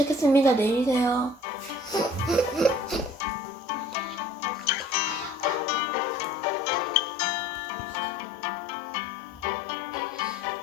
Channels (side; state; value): both; normal; correlation 0.50